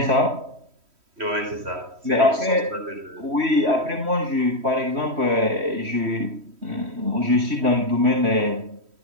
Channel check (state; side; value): late; left; 3.1 ms